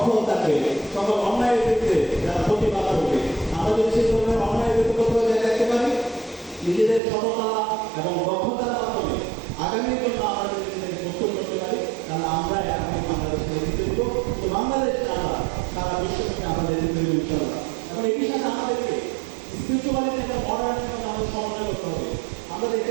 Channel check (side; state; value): left; drops out; at 7.0 s